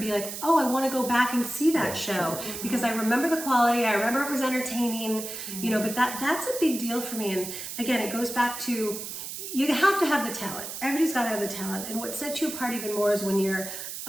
like, oh, I want to go back and see that show because I remember the quality. I remember it was entertaining, But that's a big deal for me. And again, it goes back to you have to have the talent. Everybody's got to have the talent. And what sets you apart even more is when you're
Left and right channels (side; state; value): right; noise; hiss, 8 dB below the sound